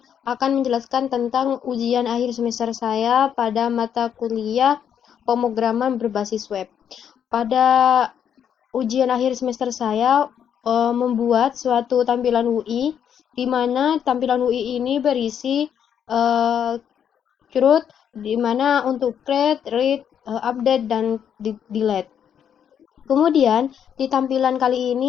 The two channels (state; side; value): quieter; right; 8.6 dB